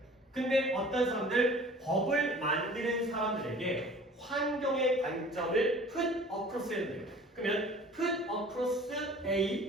근데 어떤 사람들 법을 만드는 사람들에게 환경의 관점을 put across 해야 돼요. 그러면 put across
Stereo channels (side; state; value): both; normal; correlation 0.47